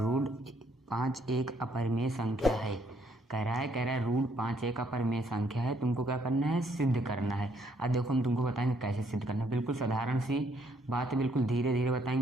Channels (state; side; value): normal; both; correlation 0.69